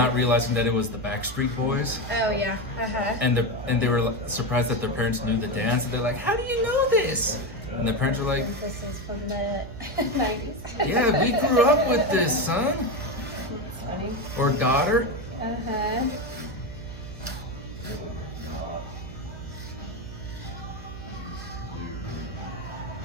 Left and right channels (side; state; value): right; noise; hum, 11 dB below the sound